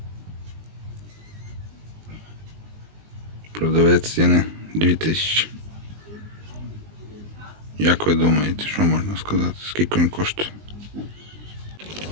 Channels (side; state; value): left; late; 19 ms